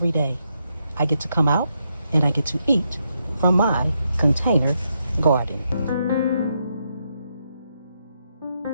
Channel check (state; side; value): inverted; both; correlation -0.81